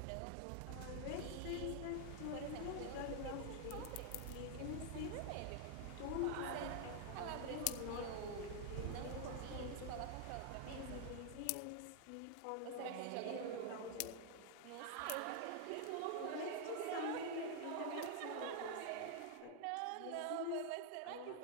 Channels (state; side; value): different; both; correlation 0.00